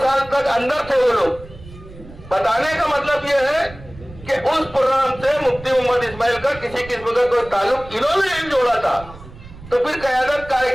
साल तक अंदर थे वो लोग। बताने का मतलब ये है कि उस प्रोग्राम से मुफ्ती मोहम्मद इस्माइल का किसी किस्म का कोई ताल्लुक इन्होंने नहीं जोड़ा था, तो फिर क़यादत काहे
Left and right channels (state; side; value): noise; right; rumble, 18 dB below the sound